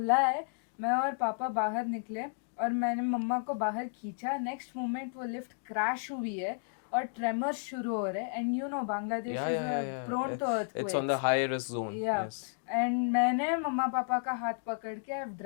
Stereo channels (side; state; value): right; silent; digital silence